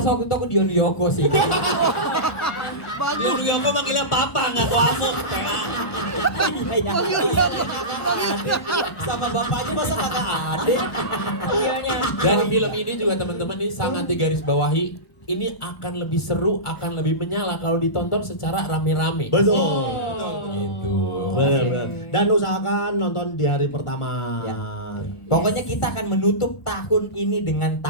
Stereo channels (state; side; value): late; right; 1.4 ms